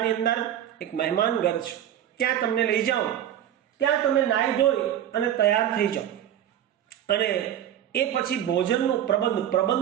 અંદર એક મહેમાન ઘર છે, ત્યાં તમને લઈ જાઉં. ત્યાં તમે નાહી ધોઈ અને તૈયાર થઈ જાઓ. અને એ પછી ભોજનનો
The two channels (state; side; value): quieter; left; 10.9 dB